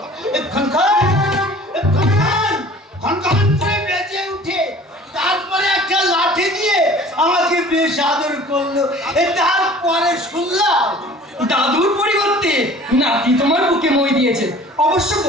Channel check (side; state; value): both; normal; correlation 0.47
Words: খনখন করে বেজে উঠে তারপরে একটা লাঠি দিয়ে আমাকে বেশ আদর করলো। তারপরে শুনলাম দাদুর পরিবর্তে নাতি তোমার বুকে মই দিয়েছে। অবশ্য